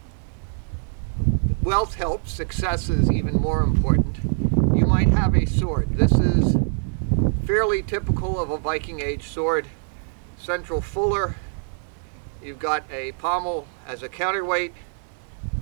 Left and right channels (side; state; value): left; silent; 63 dB below the other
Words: wealth helps. Success is even more important. You might have a sword. This is fairly typical of a Viking Age sword. Central fuller. You've got a pommel as a counterweight.